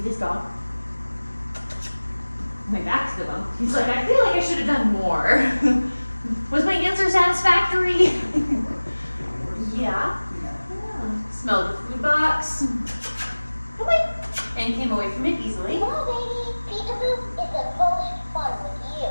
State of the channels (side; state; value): both; inverted; correlation -1.00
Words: this dog? My back to the bump. He's like, I feel like I should have done more. Was my answer satisfactory? Yeah. Smelled the food box. Come on. And came away from it easily. Come on, baby. Peekaboo is the most fun with you.